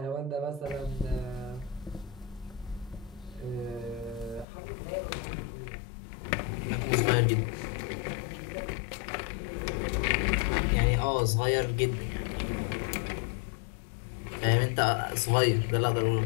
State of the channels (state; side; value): drops out; right; at 4.5 s